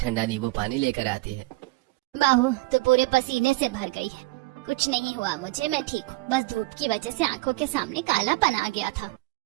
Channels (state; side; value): quieter; left; 21.6 dB